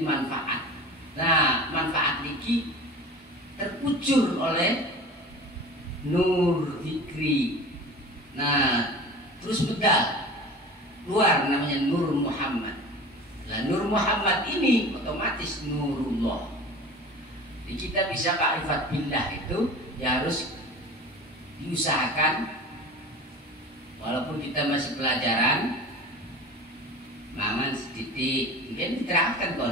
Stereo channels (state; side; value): normal; both; correlation 0.37